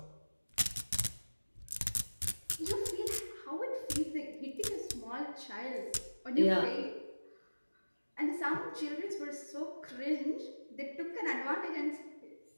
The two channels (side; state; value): both; inverted; correlation -1.00